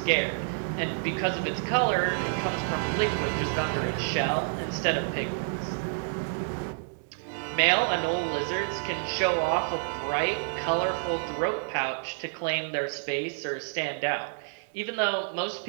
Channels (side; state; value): left; silent; digital silence